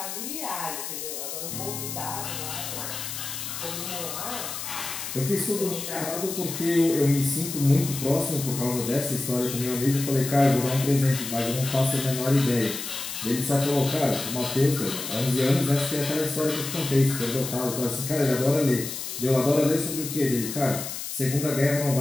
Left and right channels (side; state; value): left; noise; hiss, 7 dB below the sound